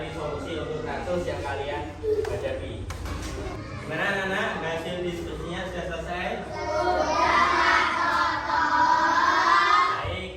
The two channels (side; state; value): both; identical; correlation 1.00